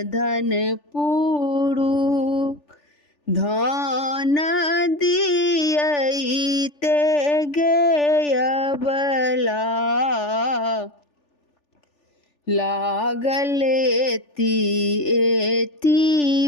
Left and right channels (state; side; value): late; right; 3.4 ms